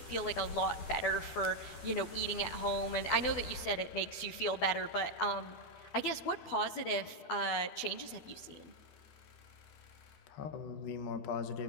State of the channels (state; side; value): late; right; 12 ms